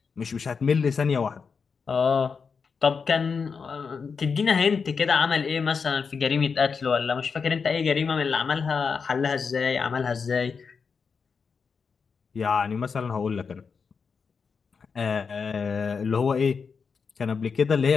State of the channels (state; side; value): quieter; right; 5.5 dB